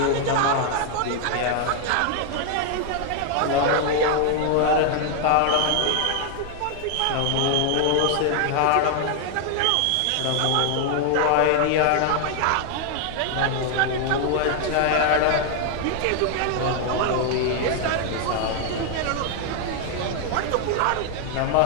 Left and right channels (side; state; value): both; different; correlation 0.00